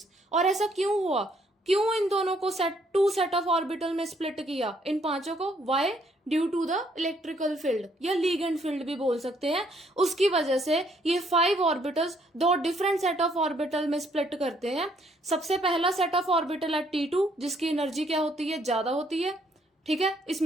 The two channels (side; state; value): both; normal; correlation 0.68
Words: और ऐसा क्यों हुआ? क्यों इन दोनों को टू सेट ऑफ ऑर्बिटल में स्प्लिट किया, इन पांचों को? Why? Due to the electrical field या लीगेंड फील्ड भी बोल सकते हैं। उसकी वजह से ये 5 orbitals 2 different set of orbital में स्प्लिट करते हैं। सबसे पहला सेट ऑफ ऑर्बिटल है T2, जिसकी एनर्जी क्या होती है? ज्यादा होती है, ठीक है।